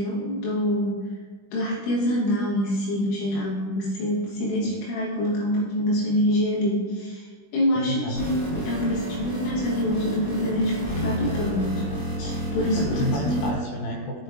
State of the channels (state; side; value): late; right; 20 ms